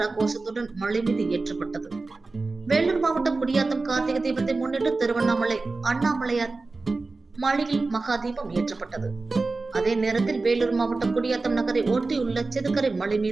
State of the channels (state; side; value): quieter; left; 3.6 dB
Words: கோஷத்துடன் மலை மீது ஏற்றப்பட்டது. வேலூர் மாவட்டம் குடியாத்தம் கார்த்திகை தீபத்தை முன்னிட்டு திருவண்ணாமலை அண்ணாமலையார் மலையில் மகா தீபம் ஏற்றப்பட்டது. அதே நேரத்தில் வேலூர் மாவட்டம் குடியாத்தம் நகரை ஒட்டியுள்ள செதுக்கரை மலை